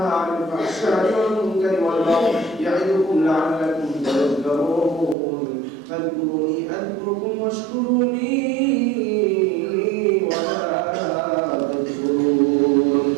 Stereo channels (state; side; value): drops out; left; at 5.2 s